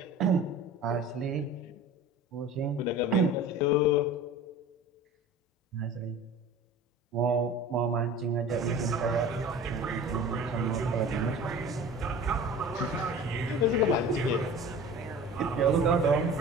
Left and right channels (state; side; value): normal; both; correlation 0.39